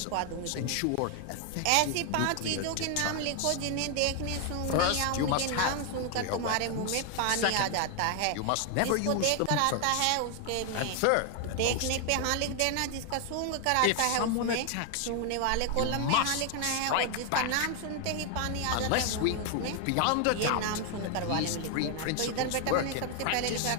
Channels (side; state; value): both; different; correlation 0.00